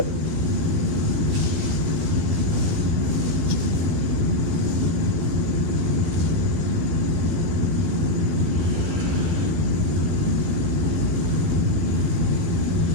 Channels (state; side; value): late; left; 12 ms